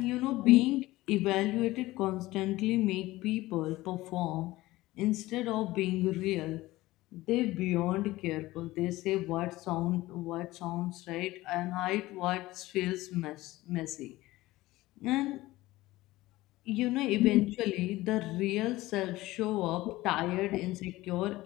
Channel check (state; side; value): quieter; right; 18.1 dB